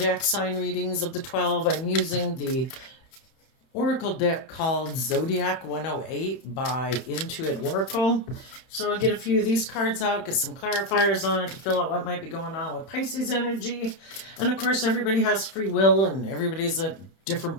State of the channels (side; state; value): right; late; 31 ms